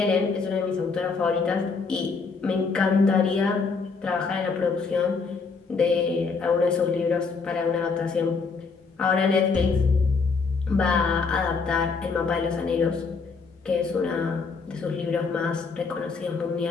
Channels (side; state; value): right; quieter; 4.7 dB